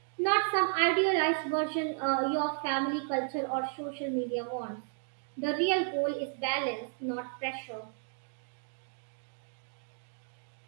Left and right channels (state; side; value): silent; left; 56 dB below the other